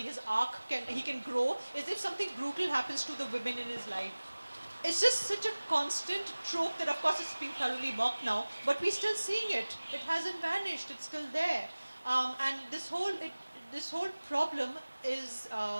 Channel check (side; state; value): both; inverted; correlation -1.00